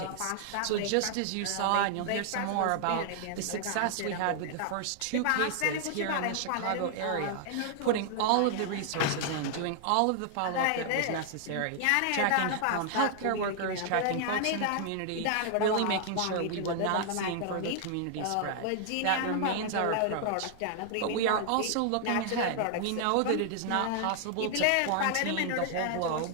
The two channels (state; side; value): different; both; correlation 0.00